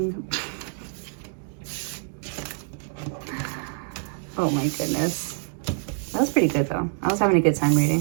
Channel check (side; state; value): left; silent; 61 dB below the other